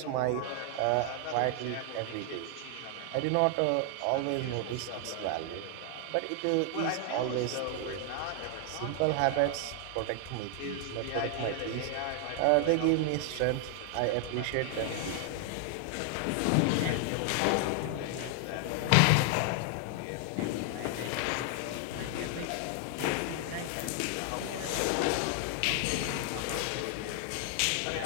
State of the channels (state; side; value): different; both; correlation 0.00